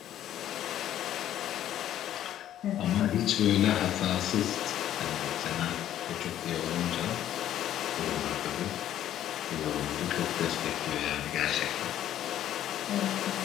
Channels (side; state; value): right; quieter; 11.7 dB